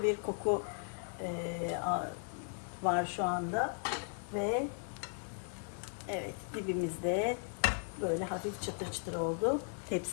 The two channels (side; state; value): right; silent; 53 dB below the other